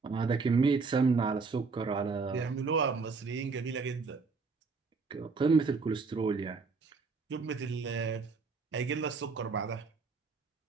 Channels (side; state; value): left; quieter; 4.6 dB